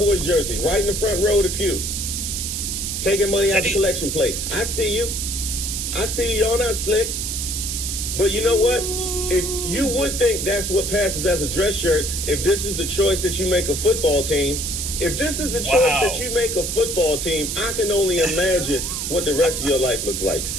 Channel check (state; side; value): noise; right; hiss, 3 dB below the sound